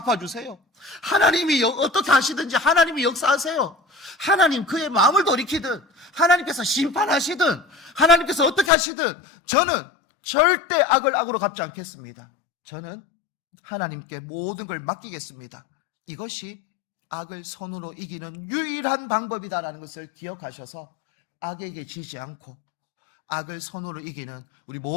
하나님이 어떻게 하시든지 하나님이 역사하세요. 하나님 그의 마음을 돌이키든 하나님께서 심판하시든 하나님께서 어떻게 하시든 저는 절대 악을 악으로 갚지 않겠습니다. 저는 하나님께 모든 걸 맡기겠습니다. 이것이 악을 선으로 이기는 유일한 방법이다라는 것을 기억하셔서 악에게 지지 않고 악을 선으로 이기는 우리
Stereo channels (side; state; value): right; drops out; at 8.7 s